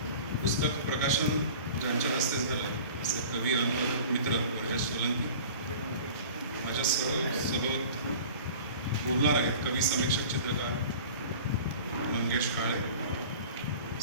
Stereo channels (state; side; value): inverted; both; correlation -0.42